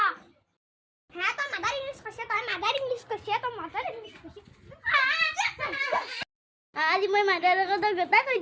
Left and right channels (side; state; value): both; identical; correlation 1.00